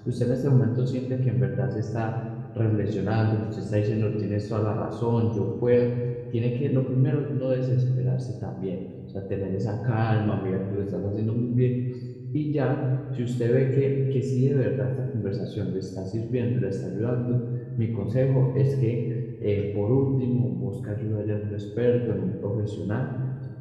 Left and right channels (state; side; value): identical; both; correlation 1.00